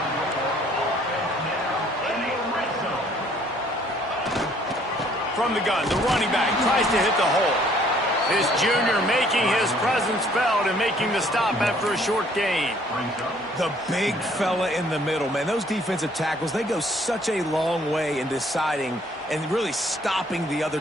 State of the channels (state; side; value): normal; both; correlation 0.61